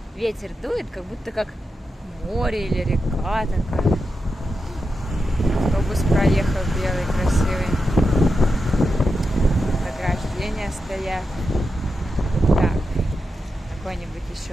Ветер дует, как будто как море или река такая. Автобус проехал белый, красивый. Ограждения стоят. Так, какой-нибудь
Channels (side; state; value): both; normal; correlation 0.88